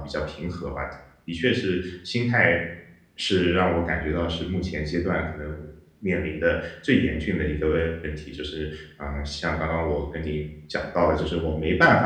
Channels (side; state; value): both; identical; correlation 1.00